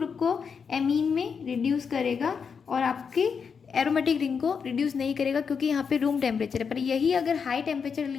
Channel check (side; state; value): right; quieter; 6.2 dB